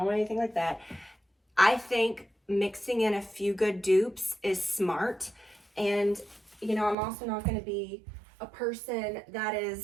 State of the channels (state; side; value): drops out; left; at 7.0 s